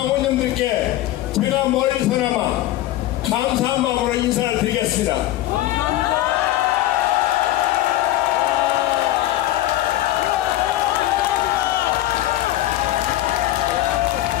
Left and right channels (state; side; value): quieter; right; 15.0 dB